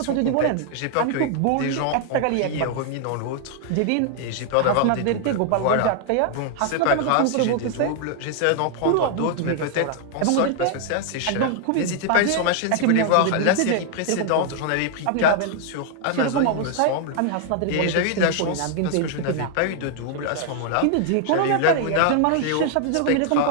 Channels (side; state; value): both; different; correlation 0.00